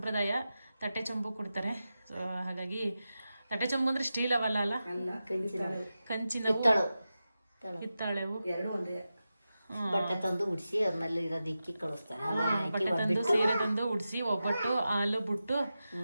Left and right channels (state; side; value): inverted; both; correlation -0.92